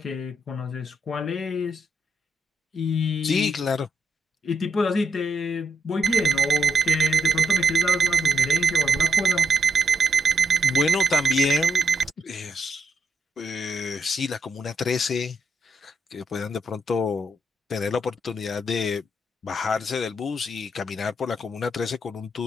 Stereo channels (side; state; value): both; normal; correlation 0.78